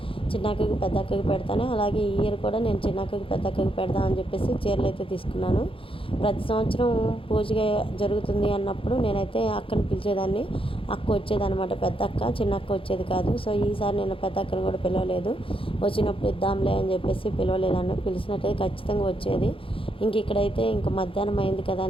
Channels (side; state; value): right; late; 0.26 ms